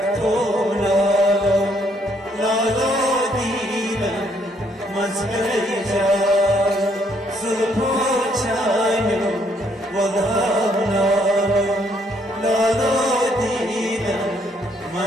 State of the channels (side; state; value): both; normal; correlation 0.69